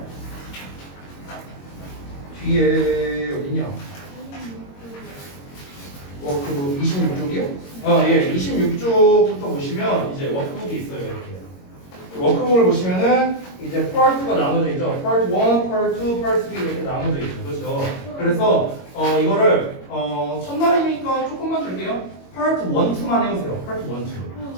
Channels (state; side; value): late; right; 22 ms